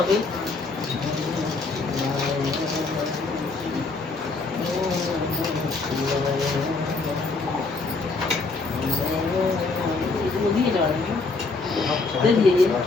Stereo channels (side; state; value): right; quieter; 3.9 dB